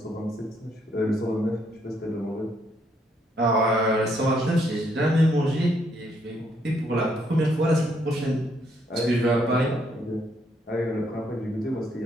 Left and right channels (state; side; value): normal; both; correlation 0.72